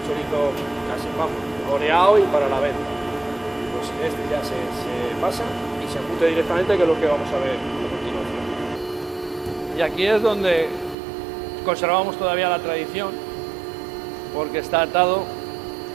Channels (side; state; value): left; drops out; at 11.0 s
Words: chorizo casi, vamos, oreado y para la venta. Pues este ya se pasa y se embute directamente, que es lo que vamos a ver a continuación. Y aquí es donde conservamos todavía la tradición, porque está atado